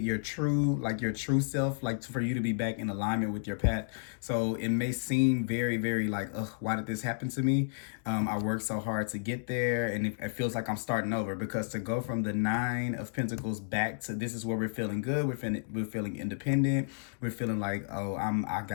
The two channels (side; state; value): right; silent; digital silence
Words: your true self, like for you to be back in alignment with your path. So it may seem very, very like, ugh, why did this happen to me? I worked so hard to get there, and it feels like I'm starting over, because to go from the 9 of Pentacles back to this is where we're feeling good, we're feeling independent, we're feeling like, oh, I